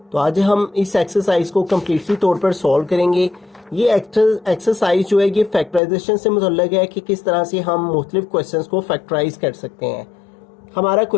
तो आज हम इस एक्सरसाइज को कम्प्लीटली तौर पर सॉल्व करेंगे। ये एक्सरसाइज जो है ये फैक्टराइजेशन से मुतल्लिक है कि किस तरह से हम मुख्तलिफ क्वेश्चंस को फैक्टराइज कर सकते हैं। हमारा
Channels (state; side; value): drops out; right; at 5.8 s